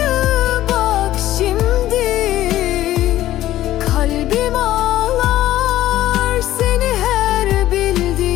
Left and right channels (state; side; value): quieter; right; 14.1 dB